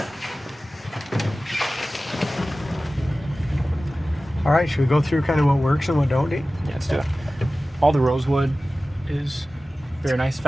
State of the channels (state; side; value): normal; both; correlation 0.96